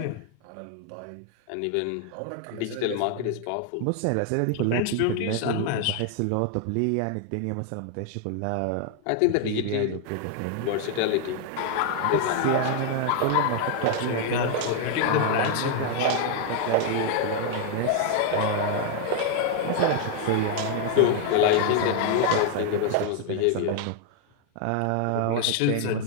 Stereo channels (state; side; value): different; both; correlation 0.00